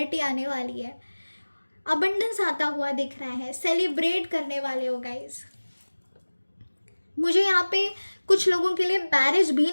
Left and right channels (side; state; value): both; inverted; correlation -1.00